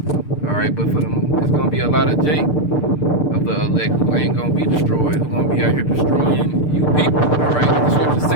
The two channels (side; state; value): right; late; 6.7 ms